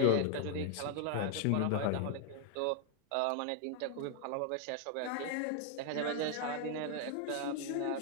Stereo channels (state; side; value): different; both; correlation 0.00